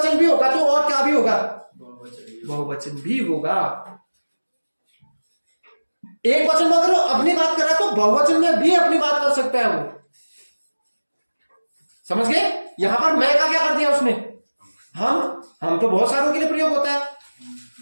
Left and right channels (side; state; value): both; inverted; correlation -1.00